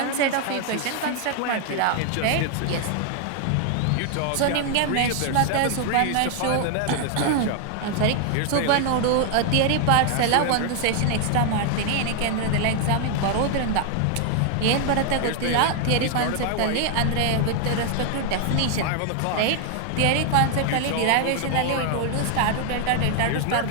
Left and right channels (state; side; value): different; both; correlation 0.00